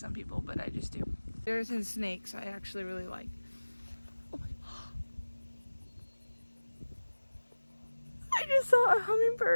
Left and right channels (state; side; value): inverted; both; correlation -1.00